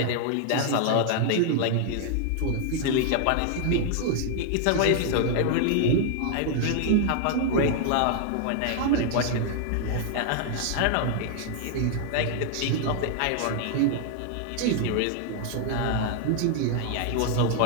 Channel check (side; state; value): both; different; correlation 0.00